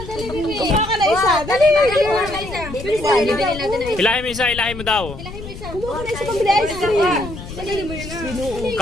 ka na isa. Dali. Bibili natin na. Ilahin mo isa, ilahin mo daw. Kumuha ka na isa pambili ice cream.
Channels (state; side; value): noise; left; rumble, 11 dB below the sound